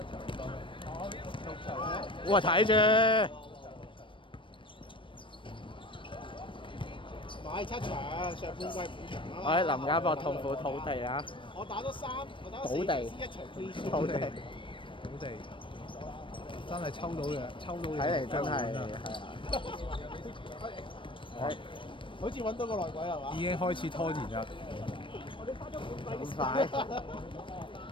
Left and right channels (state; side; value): late; right; 0.25 ms